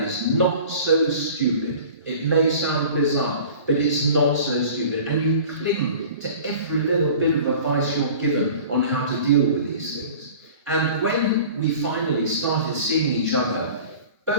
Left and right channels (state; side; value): inverted; both; correlation -0.43